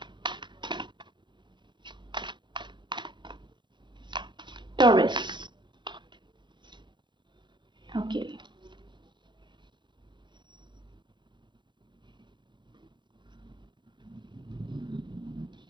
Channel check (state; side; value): late; left; 0.23 ms